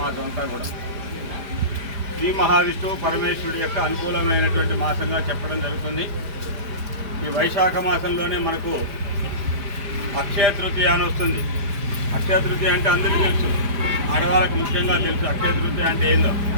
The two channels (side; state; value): left; late; 5.0 ms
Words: మాసం అంతా కూడా శ్రీ మహావిష్ణువు పరమేశ్వరుడి యొక్క అనుకూలమైనటువంటి మాసంగా చెప్పడం జరుగుతుంది. ఈ వైశాఖ మాసంలోనే మనకు అక్షయ తృతీయ అని వస్తుంది. అక్షయ తృతీయ అంటే అందరికీ తెలుసు, ఆడవాళ్ళకు ముఖ్యంగా తెలుసు. అక్షయ తృతీయ అంటే ఏందో